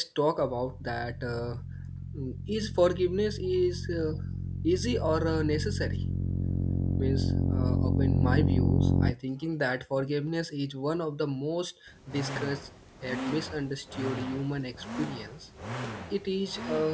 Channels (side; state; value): both; identical; correlation 1.00